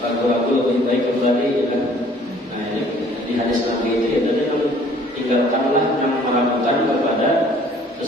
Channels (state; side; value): normal; both; correlation 0.56